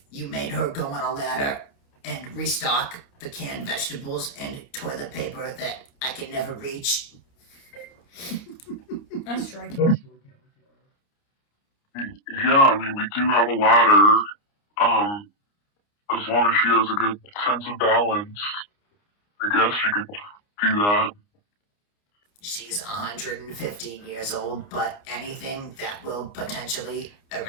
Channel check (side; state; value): right; late; 29 ms